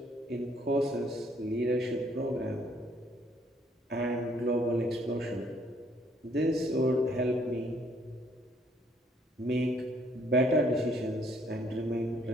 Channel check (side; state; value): both; normal; correlation 0.65